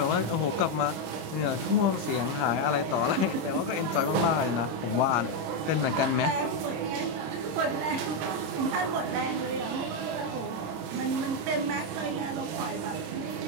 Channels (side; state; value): left; late; 26 ms